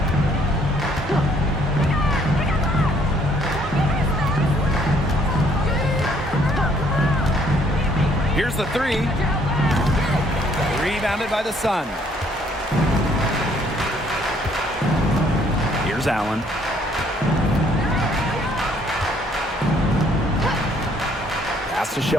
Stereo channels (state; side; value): normal; both; correlation 0.65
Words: Here's the 3. Rebounded by the Sun. Here's Allen. Pass to